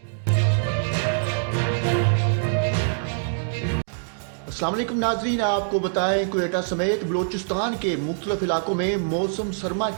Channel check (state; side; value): silent; left; digital silence